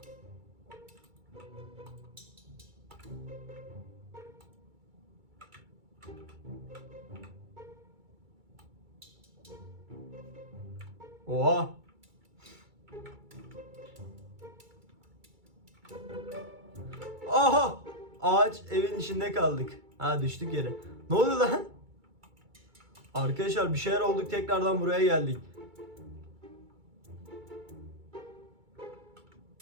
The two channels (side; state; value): left; late; 2.3 ms